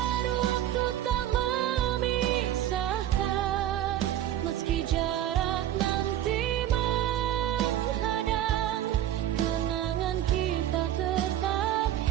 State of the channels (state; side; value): quieter; left; 12.0 dB